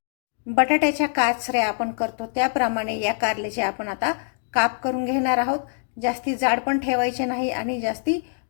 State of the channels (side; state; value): right; silent; 63 dB below the other